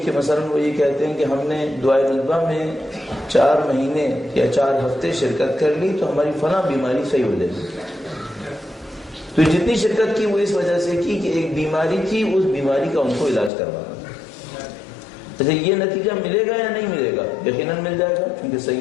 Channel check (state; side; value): drops out; right; at 13.5 s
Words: کہ مثلا وہ یہ کہتے ہیں کہ ہم نے دعائے ندبہ میں 4 مہینے یا 4 ہفتے شرکت کر لی تو ہماری فلاں بیماری صحیح ہو جائے گی. تو جتنی شرکت کی وہ اس وجہ سے کی کہ ایک بیماری تھی، اس بیماری کا ان کو علاج کروانا. اچھا یہ نتیجہ ملے گا یا نہیں ملے گا؟ یقیناً مل جائے گا، کیونکہ